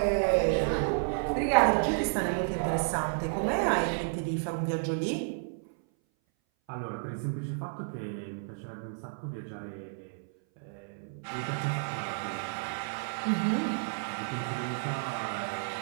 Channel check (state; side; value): silent; left; 57 dB below the other